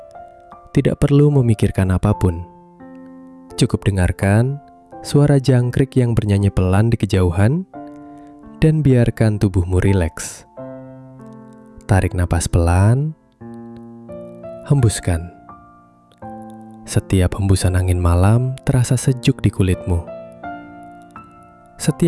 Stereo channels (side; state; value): both; identical; correlation 1.00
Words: tidak perlu memikirkan apapun. Cukup dengarkan suara jangkrik yang bernyanyi pelan di kejauhan dan biarkan tubuhmu rileks. Tarik napas pelan, hembuskan. Setiap hembusan angin malam terasa sejuk di kulitmu.